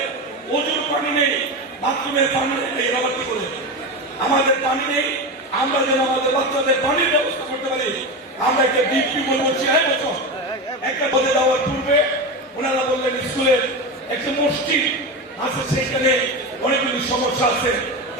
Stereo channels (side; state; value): both; normal; correlation 0.20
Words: ওজুর পানি নেই, বাথরুমের পানি নেই, এরা কি করে আমাদের পানি নেই, আমরা যেন আমাদের বাচ্চাদের পানির ব্যবস্থা করতে পারি। আমরা একটা ডিপি বলবো 6 বছর একটা পদে দেওয়ার পূর্বে ওনারা বললেন স্কুলের একটা মসজিদ আছে, সেখানে অনেকগুলি সমস্যা আছে,